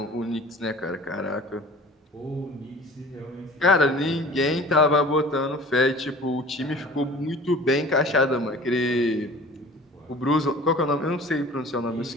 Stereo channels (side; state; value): both; normal; correlation 0.45